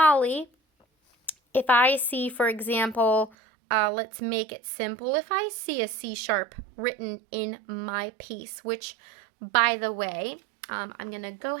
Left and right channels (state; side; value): drops out; left; at 3.3 s